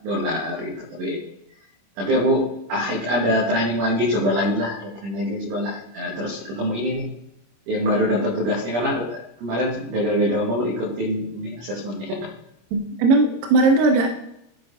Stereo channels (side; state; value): left; late; 26 ms